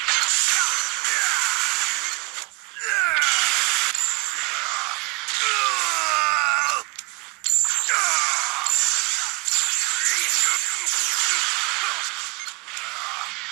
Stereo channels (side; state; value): left; quieter; 28.2 dB